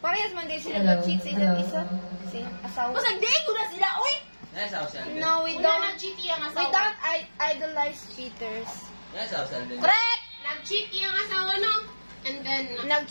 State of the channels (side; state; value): both; inverted; correlation -1.00